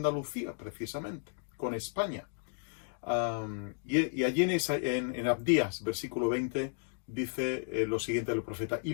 precisamente, con España. Y allí en Abdías, versículo 20, dice lo siguiente del profeta:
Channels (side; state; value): right; silent; 55 dB below the other